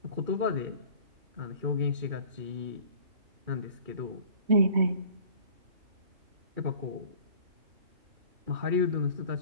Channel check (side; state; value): left; late; 2.3 ms